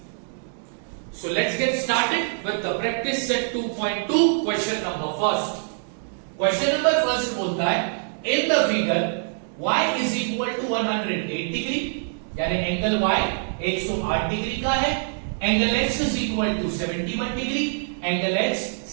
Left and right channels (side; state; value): left; silent; digital silence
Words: So let's get started with the practice set 2.2 question number first. Question number first बोलता है in the figure y is equal to 108 degree, यानी angle y 108 degree का है। Angle x is equal to 71 degree, angle x